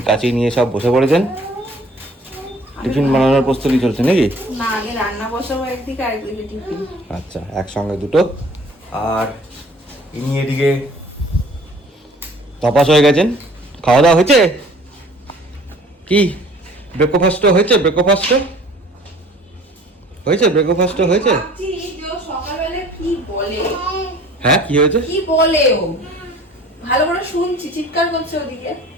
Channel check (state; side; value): normal; both; correlation 0.51